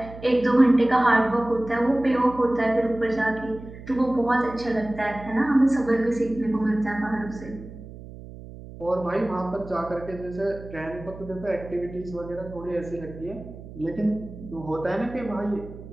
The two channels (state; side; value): noise; right; hum, 15 dB below the sound